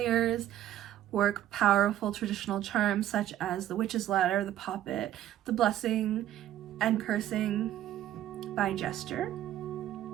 work powerful traditional charms such as the witch's ladder, the poppet, the blessing, and cursing by gesture.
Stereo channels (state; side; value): quieter; left; 12.4 dB